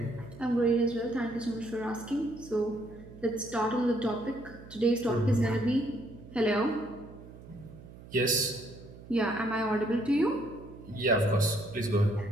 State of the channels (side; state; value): right; noise; hum, 18 dB below the sound